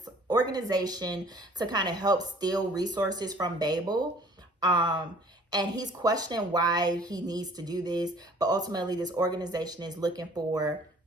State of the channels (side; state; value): both; normal; correlation 0.53